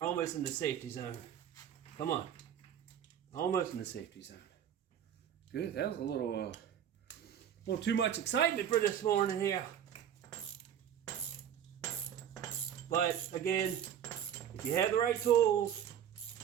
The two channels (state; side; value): quieter; left; 9.5 dB